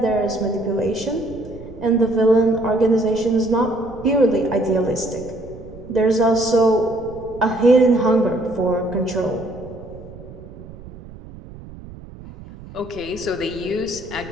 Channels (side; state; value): right; noise; rumble, 16 dB below the sound